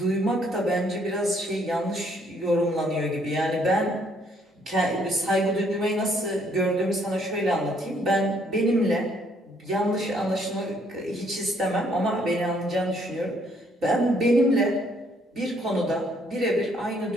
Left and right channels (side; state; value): both; normal; correlation 0.67